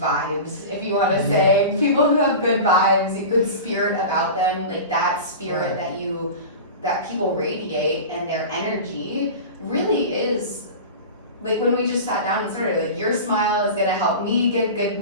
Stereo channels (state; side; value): inverted; both; correlation -0.31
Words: vibes, if you want to say, people who have good vibes, good spirit about them, like that spirit that people radiate, and their energy really is like when we just sat down and started, like your smile is gonna help me give